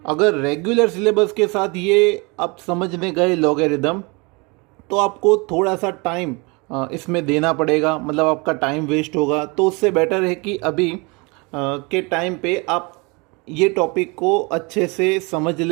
अगर रेगुलर सिलेबस के साथ ये आप समझने गए लॉगरिदम, तो आपको थोड़ा सा टाइम इसमें देना पड़ेगा, मतलब आपका टाइम वेस्ट होगा। तो उससे बेटर है कि अभी के टाइम पे आप ये टॉपिक को अच्छे से समझ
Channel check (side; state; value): left; quieter; 28.3 dB